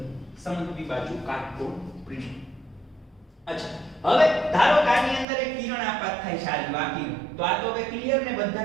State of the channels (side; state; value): left; drops out; at 5.2 s